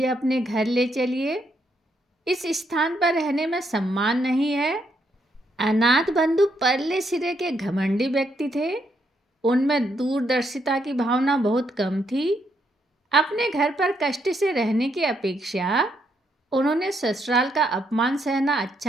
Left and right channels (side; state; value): both; normal; correlation 0.76